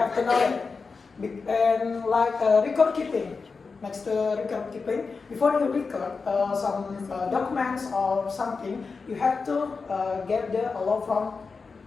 to know it. And like record keeping, next to record keeping, before you record some documents or something, you have to get the allow from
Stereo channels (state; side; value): quieter; right; 4.7 dB